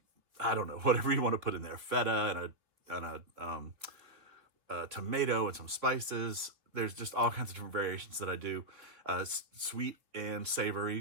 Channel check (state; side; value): late; left; 3.2 ms